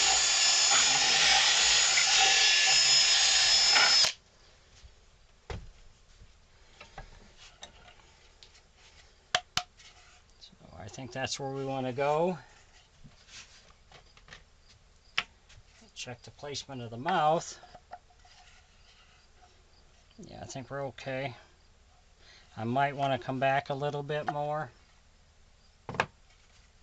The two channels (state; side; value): identical; both; correlation 1.00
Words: So I think that's where we want to go. Check the placement of the mouth. Yeah, I think we're okay. I might want to come back a little bit more.